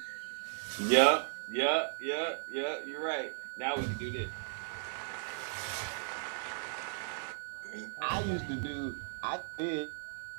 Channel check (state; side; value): silent; left; 54 dB below the other